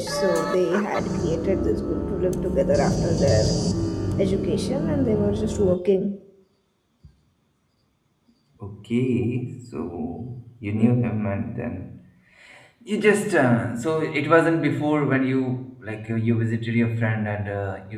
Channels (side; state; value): both; identical; correlation 1.00